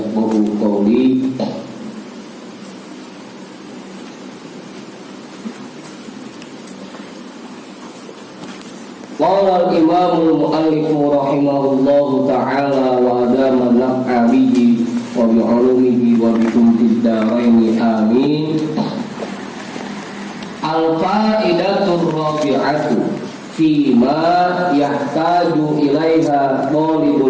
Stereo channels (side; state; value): both; identical; correlation 1.00